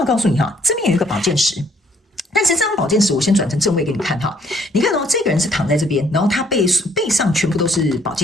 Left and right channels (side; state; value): both; normal; correlation 0.63